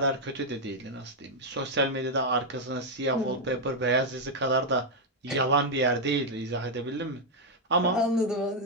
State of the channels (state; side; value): normal; both; correlation 0.00